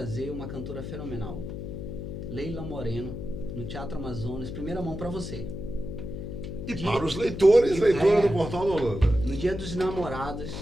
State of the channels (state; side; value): noise; left; hum, 7 dB below the sound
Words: uma cantora fenomenal, Leila Moreno, no Teatro Amazonas. Primeira mão para você. E para os leitores do Portal da Holanda. No Dia dos Namorados,